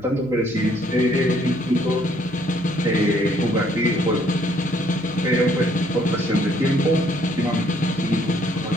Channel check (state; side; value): noise; right; hum, 23 dB below the sound